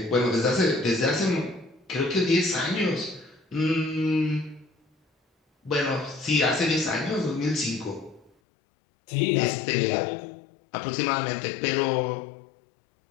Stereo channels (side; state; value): right; drops out; at 8.3 s